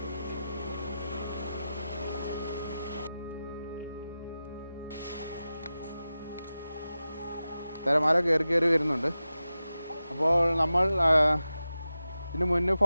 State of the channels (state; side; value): inverted; both; correlation -0.93